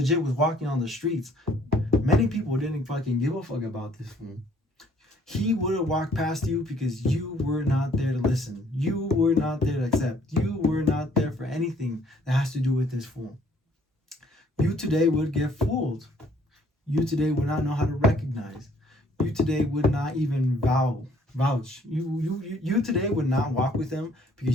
was walking on the streets. Many people didn't fucking give a fuck about this fool. He would have walked past you because you were not there to listen. You were not there to accept. You were not there for anything that has to do with this fool. You today would get fooled. You today would not know how to recognize. You today would not even vow Vouch. You today would not walk with him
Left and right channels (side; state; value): both; normal; correlation 0.61